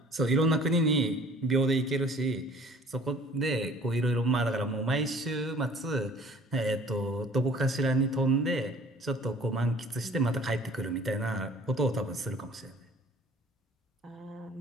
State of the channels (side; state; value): both; normal; correlation 0.51